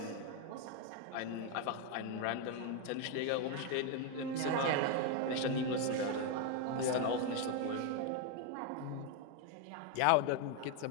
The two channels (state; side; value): different; both; correlation 0.01